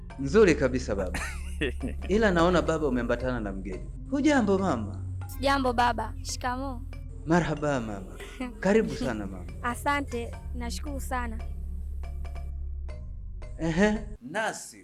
Nzuri kabisa baba. Ila naona baba umeambatana na mgeni. Hujambo mama? Sijambo baba. Shikamoo. Marhaba mama. Karibu sana mama. Asante, nashukuru sana.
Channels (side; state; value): both; identical; correlation 1.00